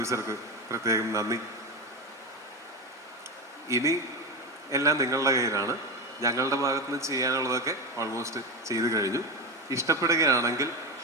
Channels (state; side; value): normal; both; correlation 0.17